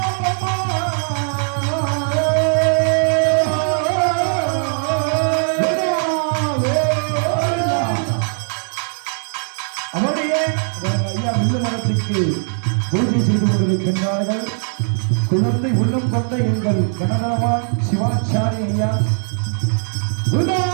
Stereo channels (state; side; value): silent; left; digital silence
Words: ஐயா வில்லு மரத்துக்கு பூஜை செய்து கொண்டிருக்கின்றார்கள். குழந்தை உள்ளம் கொண்ட எங்கள் கனகரவான் சிவாச்சாரி ஐயா